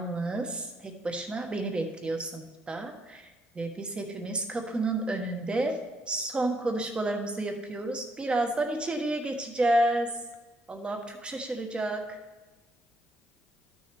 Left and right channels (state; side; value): normal; both; correlation 0.73